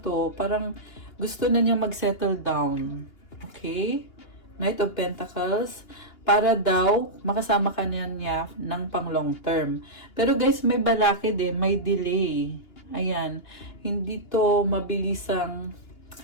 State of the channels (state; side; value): late; right; 2.8 ms